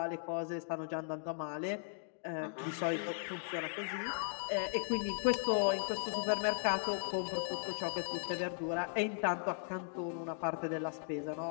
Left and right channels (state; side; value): silent; right; digital silence